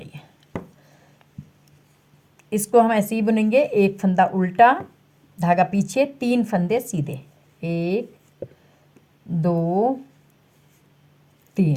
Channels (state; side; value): identical; both; correlation 1.00